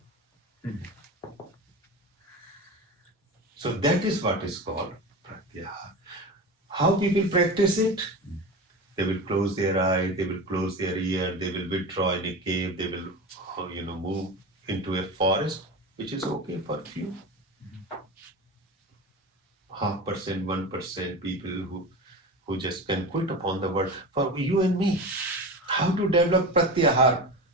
So that is what is called pratyahara. How people practice it? They will close their eye, they will close their ear, they will withdraw in a cave, they will, move into a forest, which is okay for few. 0.5%, 1% people who just can quit upon the world. For you and me, how to develop pratyahara?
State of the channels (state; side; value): normal; both; correlation 0.27